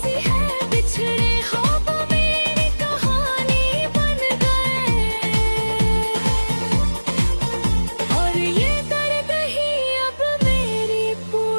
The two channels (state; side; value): inverted; both; correlation -1.00